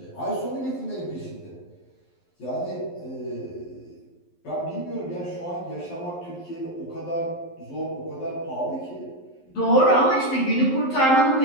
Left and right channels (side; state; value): right; late; 11 ms